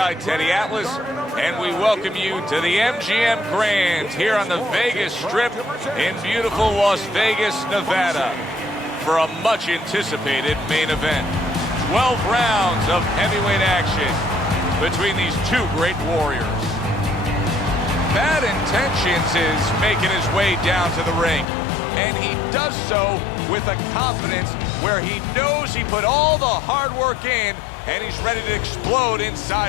Teddy Atlas, and we welcome you to the MGM Grand here on the Vegas Strip in beautiful Las Vegas, Nevada, for a much anticipated main event. 12 rounds of heavyweight action between these two great warriors. Bad Intentions is making his way down to the ring, and he does so with a confidence where he knows he put all the hard work in and he's ready to explode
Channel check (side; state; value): right; drops out; at 21.5 s